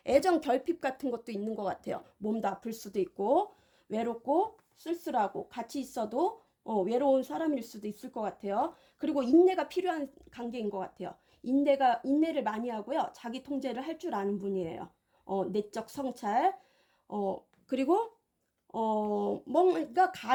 애정 결핍 같은 것도 있는 것 같아요. 몸도 아플 수도 있고 외롭고 쓸쓸하고 같이 있어도 외로운 사람일 수도 있을 것 같아요. 그리고 인내가 필요한 관계인 것 같아요. 인내를 많이 하고요. 자기 통제를 할 줄 아는 분이에요. 내적 성찰. 그리고 뭔가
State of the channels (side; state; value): both; identical; correlation 1.00